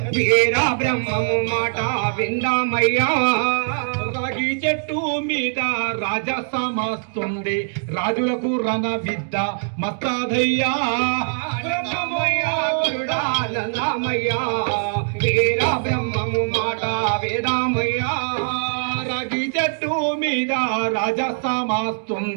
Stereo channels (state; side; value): silent; left; digital silence